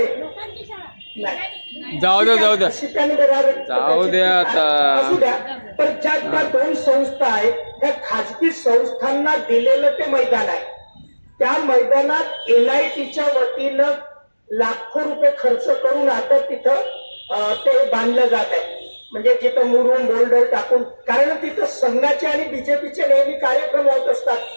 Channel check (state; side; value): inverted; both; correlation -1.00